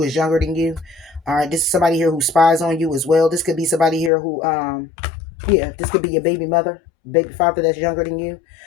is younger than you. All right. This is somebody here who spies on you as well. This could be somebody here who, yeah, this could be your baby mother, baby father that's younger than you.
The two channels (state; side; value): drops out; right; at 4.1 s